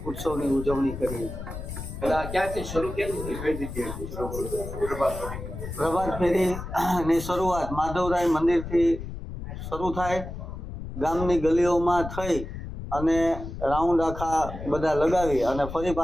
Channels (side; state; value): left; noise; rumble, 9 dB below the sound